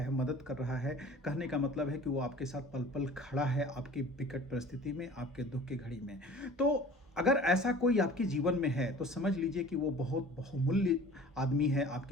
मदद कर रहा है। कहने का मतलब है कि वो आपके साथ पल पल खड़ा है आपकी विकट परिस्थिति में, आपके दुख की घड़ी में। तो अगर ऐसा कोई आपके जीवन में है तो समझ लीजिए कि वो बहुत बहुमूल्य आदमी है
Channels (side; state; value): both; normal; correlation 0.45